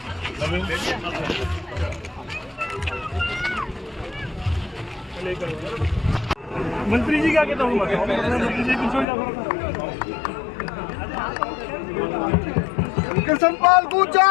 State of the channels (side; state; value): right; drops out; at 9.1 s